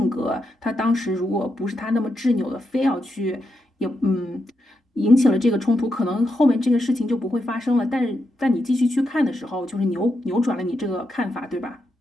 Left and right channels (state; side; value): normal; both; correlation 0.84